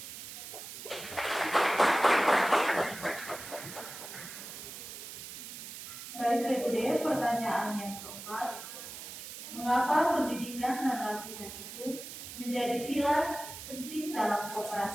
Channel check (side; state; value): right; noise; hiss, 11 dB below the sound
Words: Baik, Regup, pertanyaan yang keempat. Mengapa pendidikan dan latihan itu menjadi pilar penting dalam